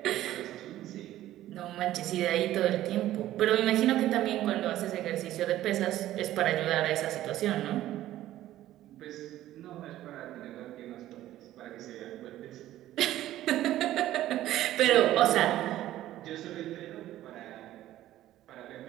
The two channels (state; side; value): quieter; left; 13.9 dB